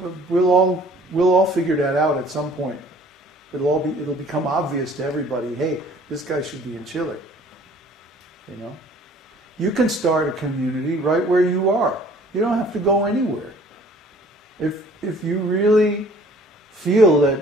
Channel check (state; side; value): normal; both; correlation 0.53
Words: we'll all figure that out at some point. It'll become obvious to everybody, hey, this guy should be in Chile. You know? You can start a community right where you are. You don't have to go anywhere. If you really feel